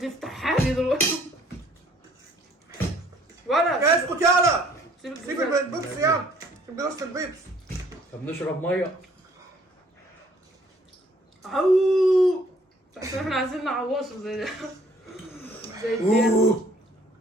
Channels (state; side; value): normal; both; correlation 0.60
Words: يفتح حامي دلوقتي. ولا اسكت يالا. سيب سيب الجزازة. البيبسي يالا. سيب جلسه البيبسي. طب نشرب ميه. عو عشان احنا عايزين نعوشه زي ده. زي الدين.